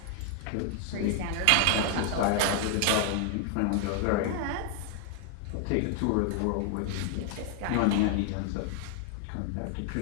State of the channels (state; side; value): different; both; correlation 0.00